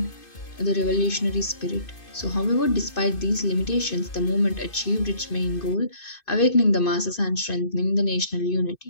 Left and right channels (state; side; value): late; right; 2.5 ms